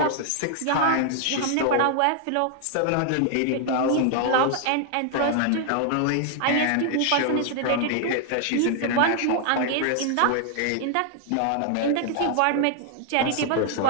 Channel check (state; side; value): different; both; correlation 0.00